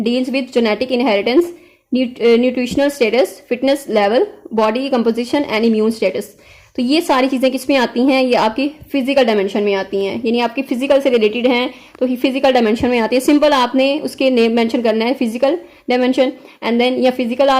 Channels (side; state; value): both; identical; correlation 1.00